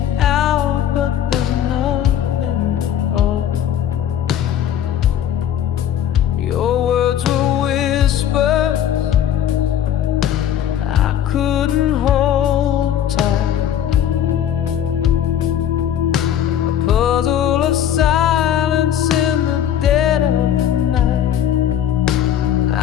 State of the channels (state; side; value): quieter; right; 10.2 dB